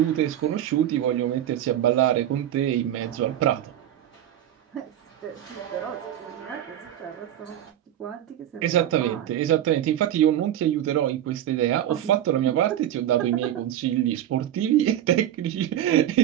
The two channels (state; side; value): quieter; left; 11.5 dB